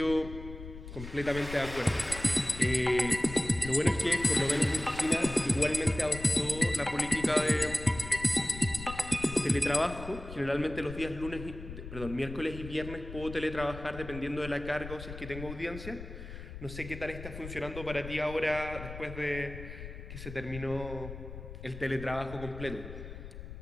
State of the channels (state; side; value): noise; left; rumble, 11 dB below the sound